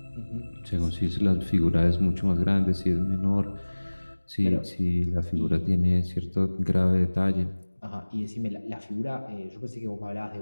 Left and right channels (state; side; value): inverted; both; correlation -1.00